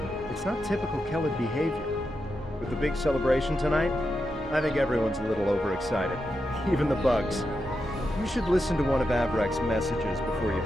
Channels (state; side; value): normal; both; correlation 0.87